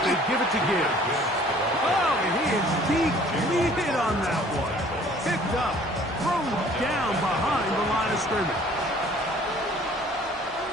they give it to Gibbs. Oh, and he is deep-leaded on that one. Picked up, thrown down behind the line of scrimmage.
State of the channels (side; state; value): both; normal; correlation 0.54